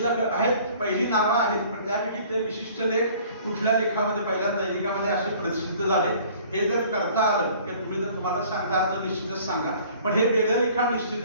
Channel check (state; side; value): inverted; both; correlation -0.51